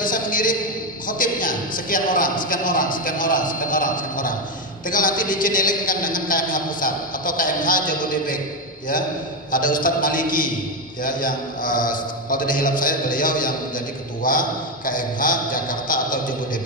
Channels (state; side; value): normal; both; correlation 0.09